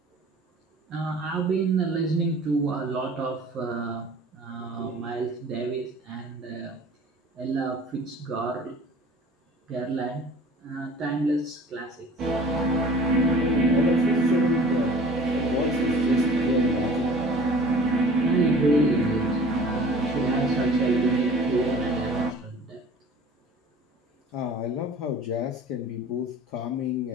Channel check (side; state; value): both; normal; correlation 0.46